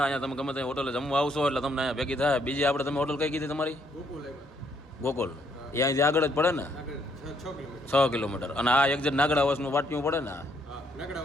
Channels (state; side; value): normal; both; correlation 0.70